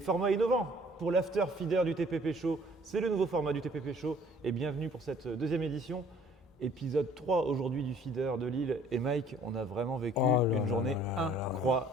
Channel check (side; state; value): both; normal; correlation 0.55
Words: innovant pour l'After Feeder du TPP Show. C'est le nouveau format du TPP Show et bienvenue pour cette deuxième édition. Épisode 3 aujourd'hui du Feeder de Lille. Et Mike, on a vraiment vécu Oh là une là journée là là là.